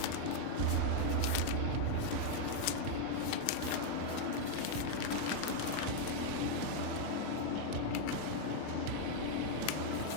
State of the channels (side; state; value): both; different; correlation 0.00